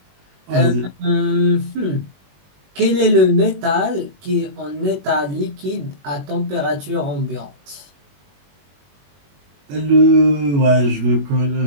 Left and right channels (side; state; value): left; late; 21 ms